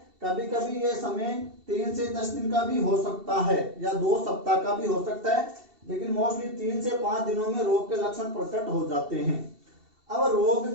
कभी कभी ये समय 3 से 10 दिन का भी हो सकता है या 2 सप्ताह का भी हो सकता है, लेकिन मोस्टली 3 से 5 दिनों में रोग के लक्षण प्रकट हो जाते हैं। अब रोग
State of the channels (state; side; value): late; left; 2.7 ms